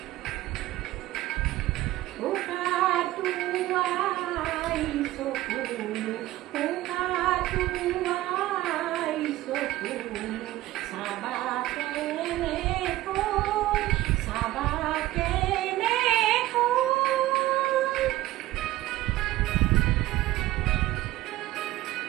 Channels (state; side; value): quieter; left; 16.4 dB